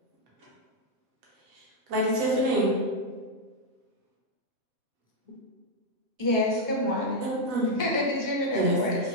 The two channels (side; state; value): left; late; 7.9 ms